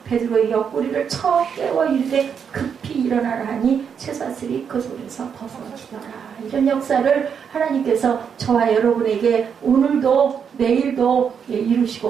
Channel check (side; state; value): left; quieter; 7.1 dB